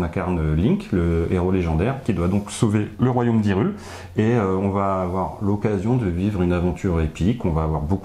incarne Link, le héros légendaire, qui doit donc sauver le royaume d'Hyrule. Et on va avoir l'occasion de vivre une aventure épique. On va avoir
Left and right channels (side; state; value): both; identical; correlation 1.00